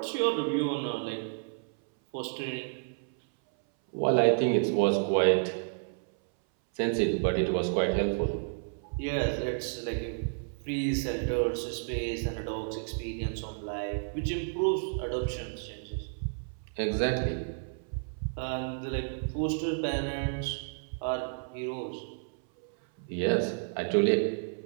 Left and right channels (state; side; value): silent; left; 57 dB below the other